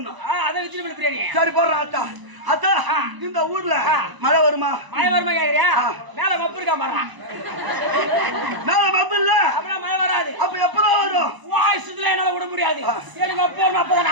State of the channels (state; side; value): late; left; 1.0 ms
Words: அதை வெஜிடபிள் பிரியாணி சரி போடுறேன். ஆத்தா அத்தா இந்த ஊர்ல மழை வருமா? மழை வருமா கேக்குறியா? மேல மப்பு இருக்கா பாரு. மேல மப்பு இல்ல அப்ப மழை வராது. அப்ப எப்பதான் வரும்? வாய்ஸ்ல என்னால விட முடியாது. எனக்கு அப்போ அப்பதான்